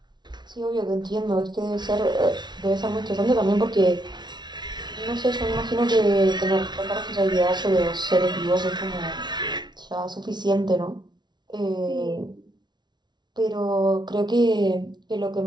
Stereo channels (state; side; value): late; left; 0.21 ms